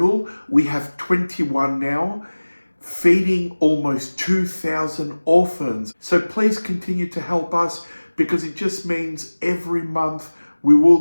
we have 21 now, feeding almost 2,000 orphans. So please continue to help us, because it just means every month we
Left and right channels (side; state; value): both; inverted; correlation -1.00